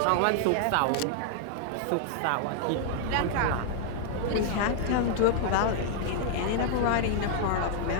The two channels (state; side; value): different; both; correlation -0.01